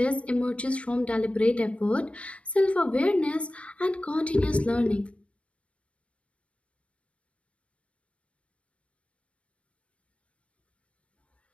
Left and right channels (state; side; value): late; right; 0.062 ms